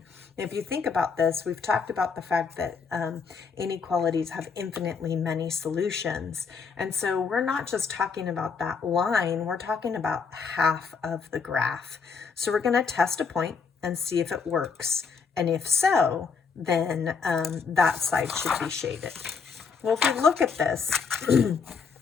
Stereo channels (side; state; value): right; quieter; 5.5 dB